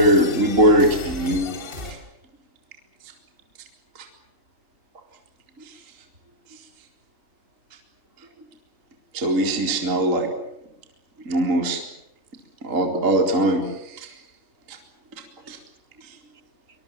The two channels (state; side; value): late; left; 3.8 ms